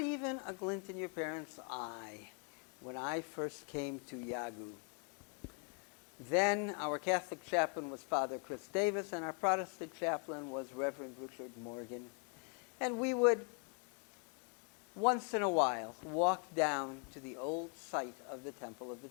even a glint in your parents' eye when I first came to Yagu. Then our Catholic chaplain was Father Chris Davis, and our Protestant chaplain was Reverend Richard Morgan. And we would, once in a while, walk down to the old site of the Temple of the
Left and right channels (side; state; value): right; quieter; 37.3 dB